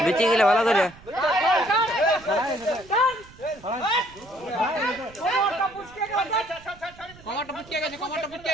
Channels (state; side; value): noise; right; rumble, 22 dB below the sound